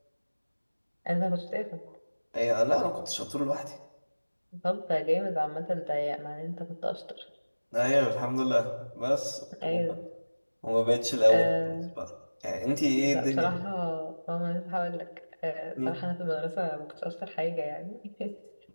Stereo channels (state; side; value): inverted; both; correlation -1.00